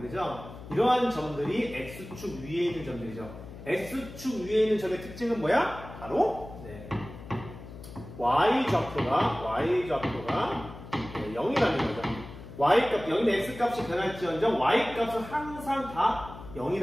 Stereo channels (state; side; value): noise; left; hum, 14 dB below the sound